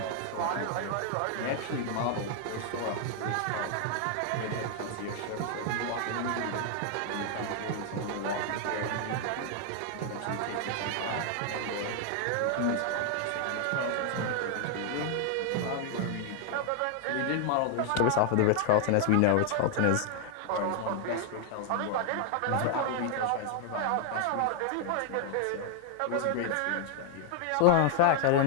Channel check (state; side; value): different; both; correlation 0.00